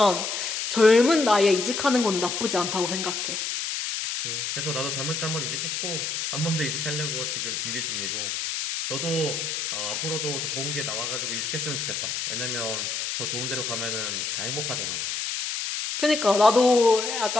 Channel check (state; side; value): noise; left; hiss, 3 dB below the sound